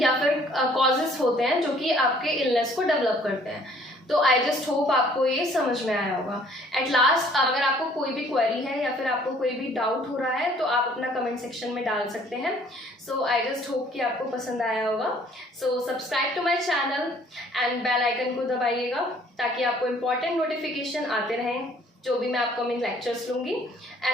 या फिर कॉजेस होते हैं जो कि आपके इलनेस को डेवलप करते हैं। तो आई जस्ट होप आपको ये समझ में आया होगा। एट लास्ट अगर आपको कोई भी क्वेरी है या फिर आपको कोई भी डाउट हो रहा है तो आप अपना कमेंट सेक्शन में डाल सकते हैं। सो आई जस्ट होप कि आपको पसंद आया होगा। So subscribe to my channel and bell icon को दबाइएगा ताकि आपको इम्पॉर्टेंट नोटिफिकेशन आते रहें जो भी मैं अपकमिंग लेक्चर्स लूँगी।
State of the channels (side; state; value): both; normal; correlation 0.58